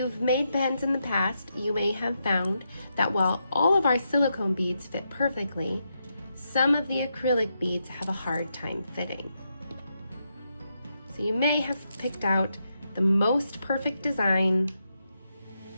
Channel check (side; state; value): both; inverted; correlation -0.83